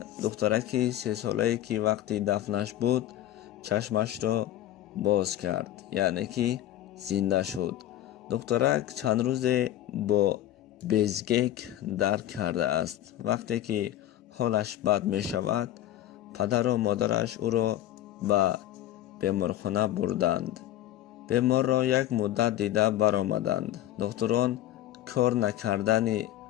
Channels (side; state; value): right; quieter; 13.0 dB